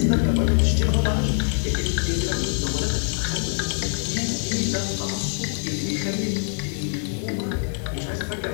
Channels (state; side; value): silent; right; 62 dB below the other